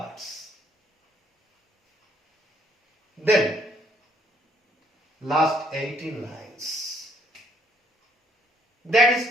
Then, last 18 lines. That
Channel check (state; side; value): normal; both; correlation 0.67